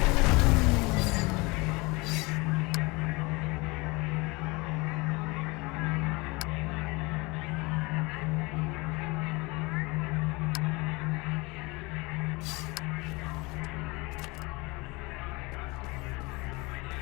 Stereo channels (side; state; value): right; quieter; 25.2 dB